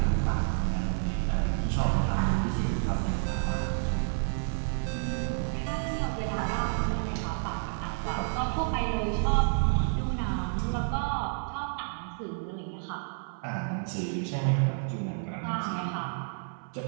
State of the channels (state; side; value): silent; left; 57 dB below the other